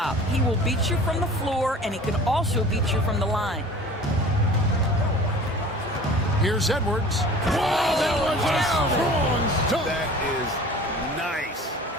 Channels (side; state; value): both; normal; correlation 0.44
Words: He will beat you from the floor, and he can also beat you from the line. Here's Edwards. Wow, that was a strong dunk. That is nice.